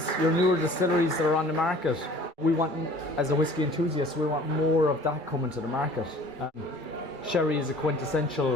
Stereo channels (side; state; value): left; late; 2.3 ms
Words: your newer distilleries that are on the market, we want, as a whiskey enthusiast, we want more of that coming to the market. Sherry is a